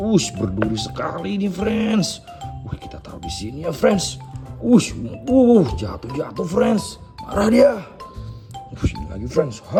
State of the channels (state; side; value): identical; both; correlation 1.00